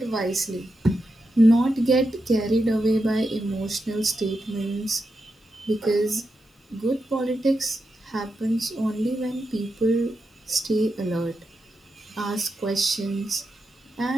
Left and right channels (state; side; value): normal; both; correlation 0.87